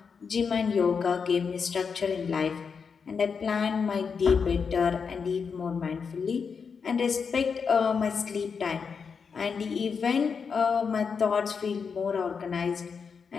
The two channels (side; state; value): right; quieter; 5.9 dB